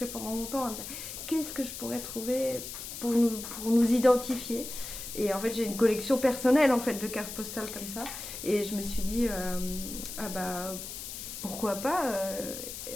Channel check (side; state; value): left; noise; hiss, 9 dB below the sound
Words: pendant longtemps à me dire qu'est-ce que je pourrais trouver pour nous identifier. Et en fait, j'ai une collection personnelle en fait de cartes postales comme ça. Et je me suis dit, pourquoi pas